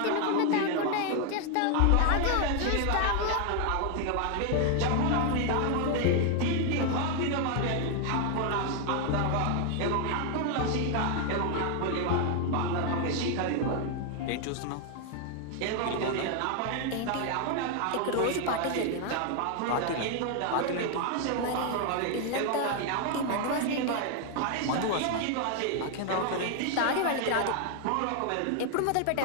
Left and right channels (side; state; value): both; different; correlation 0.00